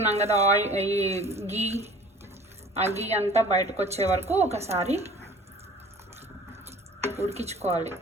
కదా ఈ గీ, ఆ గీ అంతా బయటకు వచ్చే వరకు ఒకసారి ఉడికించుకోవాలి.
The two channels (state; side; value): normal; both; correlation 0.47